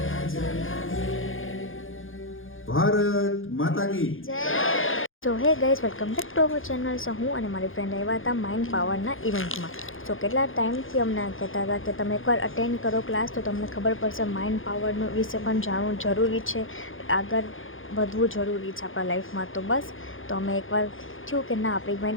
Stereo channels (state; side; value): late; right; 0.59 ms